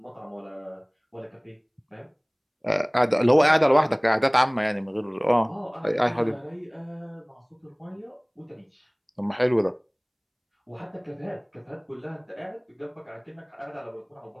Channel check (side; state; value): both; identical; correlation 1.00